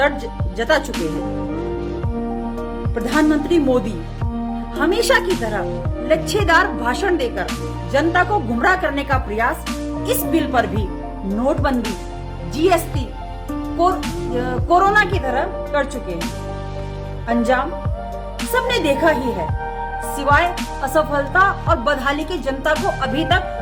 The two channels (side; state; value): both; identical; correlation 1.00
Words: जता चुके हैं। प्रधानमंत्री मोदी हमेशा की तरह लच्छेदार भाषण देकर जनता को गुमराह करने का प्रयास इस बिल पर भी नोटबंदी, जीएसटी, कोरोना की तरह कर चुके हैं। अंजाम सबने देखा ही है। सिवाय असफलता और बदहाली के जनता को अभी